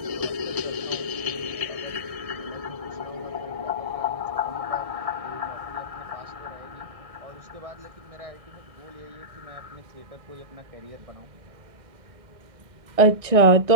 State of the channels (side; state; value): left; late; 1.6 ms